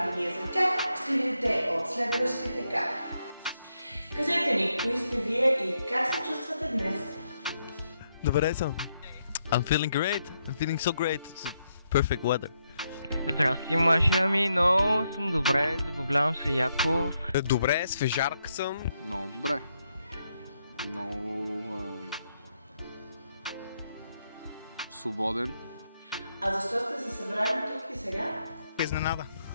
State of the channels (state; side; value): inverted; both; correlation -0.79